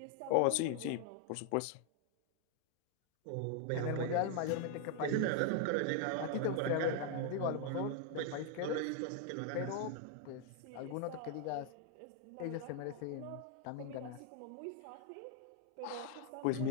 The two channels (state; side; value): different; both; correlation 0.00